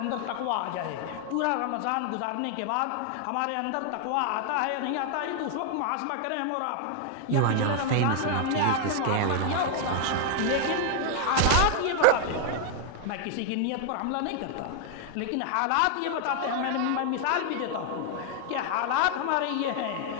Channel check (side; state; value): both; different; correlation 0.00